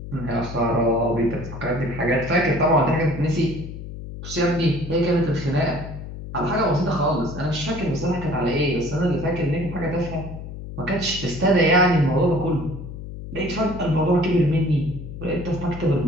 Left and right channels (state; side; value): noise; left; hum, 10 dB below the sound